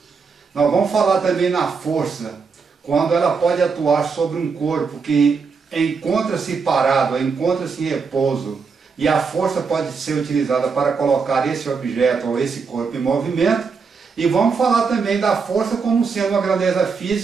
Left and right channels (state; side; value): quieter; left; 5.2 dB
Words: Nós vamos falar também na força, quando ela pode atuar sobre um corpo que encontra-se parado, encontra-se em repouso, e a força pode ser utilizada para colocar esse objeto ou esse corpo em movimento. E vamos falar também da força como sendo uma grandeza